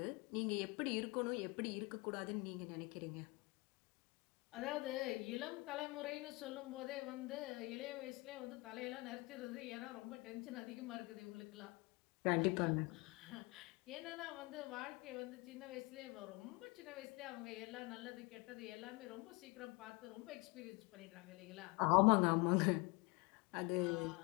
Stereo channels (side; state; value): right; quieter; 25.9 dB